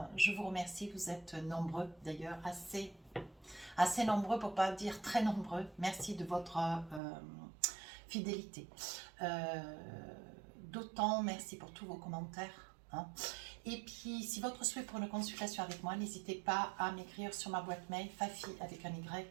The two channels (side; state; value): left; drops out; at 7.0 s